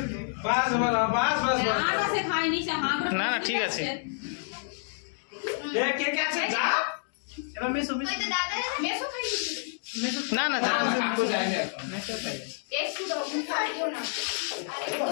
বাস বলা বাস বাস বাস আটা সে খায়নি সে হাঁ করে না, ঠিক আছে। এ কে কে আছে যা এবার মেসো ওই তো দাদা মেসো খাই দিচ্ছিল না না কাকু যায় না একটু দাও খাইও না আরে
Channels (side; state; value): right; silent; digital silence